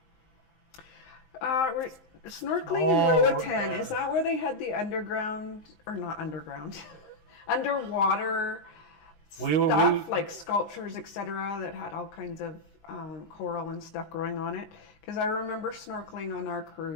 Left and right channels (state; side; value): late; right; 19 ms